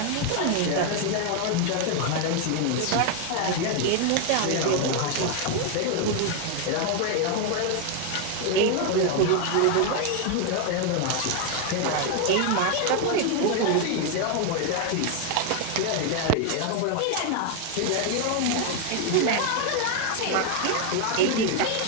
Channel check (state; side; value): different; both; correlation 0.01